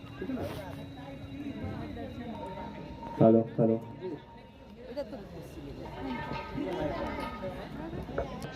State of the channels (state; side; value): identical; both; correlation 1.00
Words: ठीक है ना। हेलो हेलो,